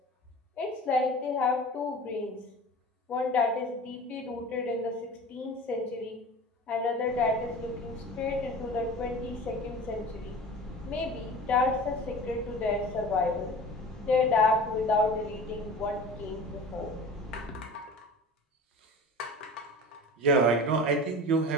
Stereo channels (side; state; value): both; normal; correlation 0.38